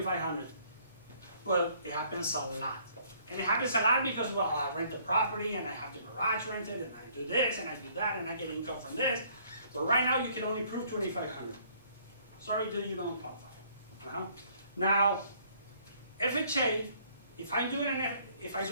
But it happens a lot. And it happens a lot because, well, I rent the property and I have the garage rented and I do this and I do that and I get income from this. But right now you can only prove $2,500. Sorry, dude, you don't qualify. Now, FHA, if I do it in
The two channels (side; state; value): both; inverted; correlation -0.62